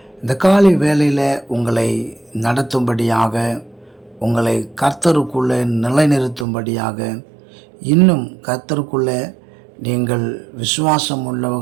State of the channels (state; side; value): drops out; left; at 6.5 s